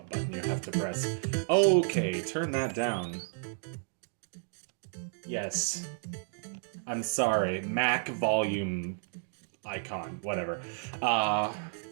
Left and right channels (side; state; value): left; silent; digital silence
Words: button you have to press. Okay, turn that down. Yes. I'm sorry. Mac volume icon. Whatever.